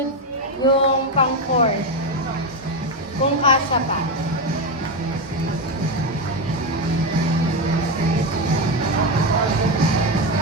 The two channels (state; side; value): normal; both; correlation 0.10